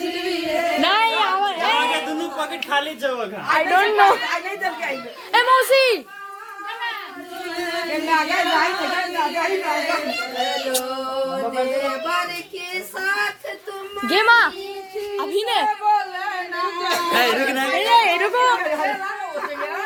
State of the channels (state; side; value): identical; both; correlation 1.00